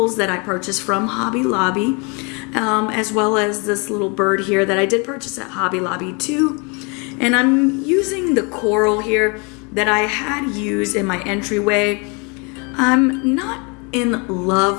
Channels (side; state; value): right; quieter; 31.9 dB